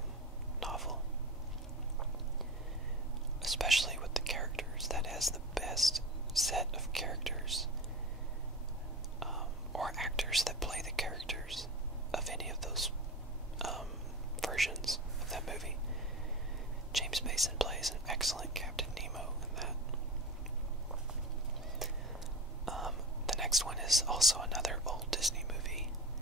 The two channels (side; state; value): both; normal; correlation 0.29